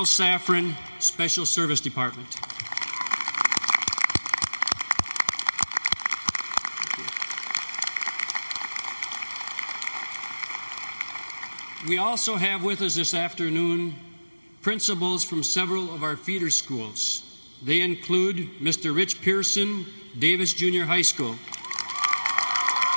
Safran, Special Service Department. We also have with us this afternoon principals from several of our feeder schools. They include Mr. Rich Pearson, Davis Junior High School.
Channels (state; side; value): inverted; both; correlation -1.00